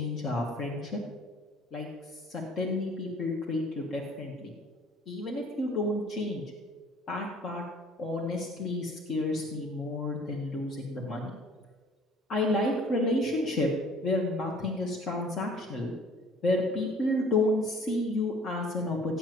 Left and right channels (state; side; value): normal; both; correlation 0.53